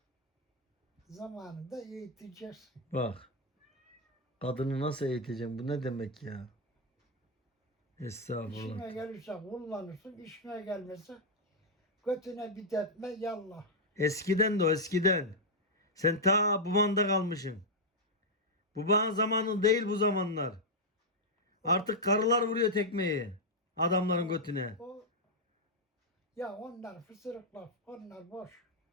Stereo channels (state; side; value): normal; both; correlation -0.03